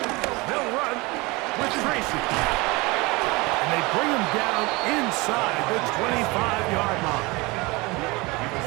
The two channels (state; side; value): quieter; left; 24.2 dB